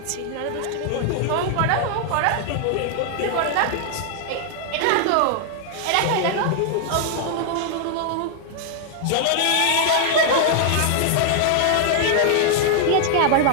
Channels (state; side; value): different; both; correlation 0.00